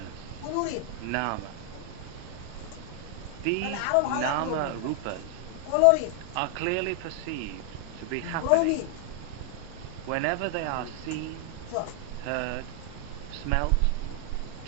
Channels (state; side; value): different; both; correlation 0.00